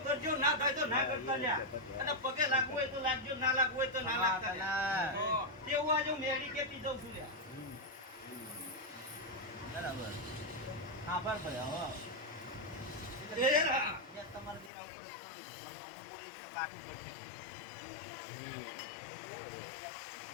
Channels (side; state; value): right; drops out; at 14.7 s